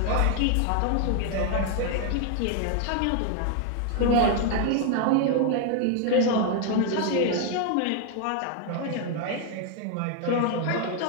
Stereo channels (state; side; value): different; both; correlation 0.00